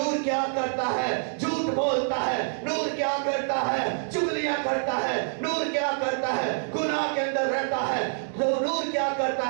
کیا کرتا ہے؟ جھوٹ بولتا ہے۔ نور کیا کرتا ہے؟ چغلیاں کرتا ہے۔ نور کیا کرتا ہے؟ گناہ کے اندر رہتا ہے۔ نور کیا کرتا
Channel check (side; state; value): left; silent; 60 dB below the other